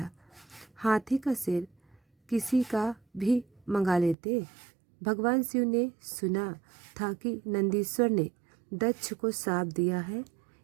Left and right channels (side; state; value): left; drops out; at 4.2 s